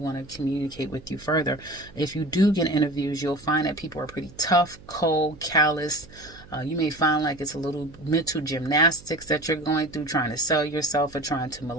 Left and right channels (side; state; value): right; noise; hum, 21 dB below the sound